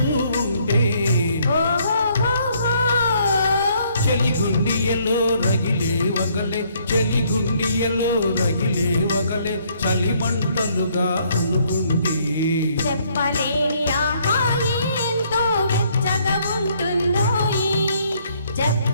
ఉంటే చెలిగుండియలో రగిలే వగలే చెలిగుండియలో రగిలే వగలే చలిమంటలుగా అనుకుంటే చెప్పలేని ఆహాయి ఎంతో వెచ్చగా ఉంటుందో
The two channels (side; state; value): both; inverted; correlation -0.67